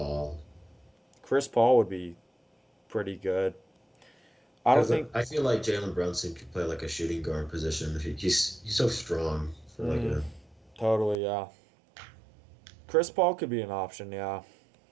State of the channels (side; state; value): left; drops out; at 11.2 s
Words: Chris Paul would be pretty good. I don't because think. I feel like Jalen Brunson could play like a shooting guard position. He's so strong for like Mm, a totally, yeah. Chris Paul could be an option, yeah.